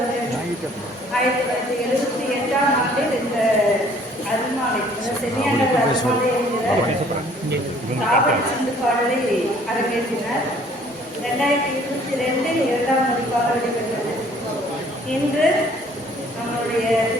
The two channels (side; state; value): both; normal; correlation 0.57